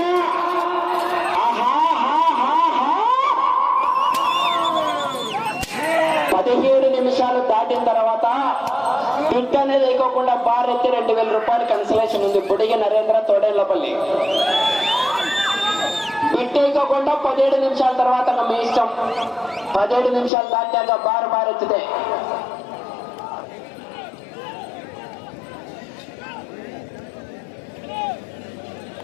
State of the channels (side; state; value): right; drops out; at 20.3 s